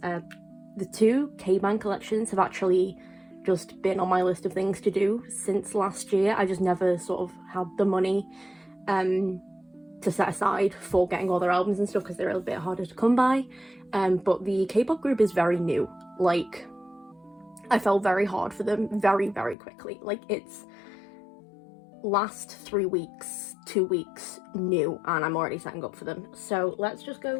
The 2 K-band collections have actually just been on my list of things to do since last year. I just never sort of had the money to set aside for getting all their albums and stuff because they're a bit harder to come by. But the K-pop group is very new. Like, I fell very hard for them very, very quickly. Like, it's last 3 weeks, 2 weeks new, and I'm already setting up for them. So let's just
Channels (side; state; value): right; drops out; at 19.6 s